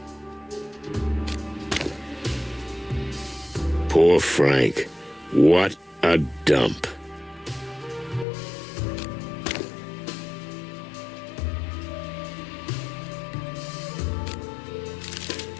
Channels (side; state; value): right; drops out; at 8.2 s